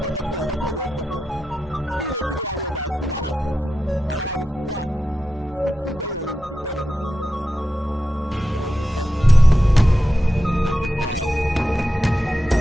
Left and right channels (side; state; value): both; normal; correlation 0.90